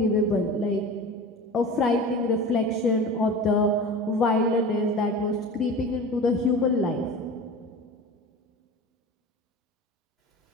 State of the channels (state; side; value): normal; both; correlation 0.34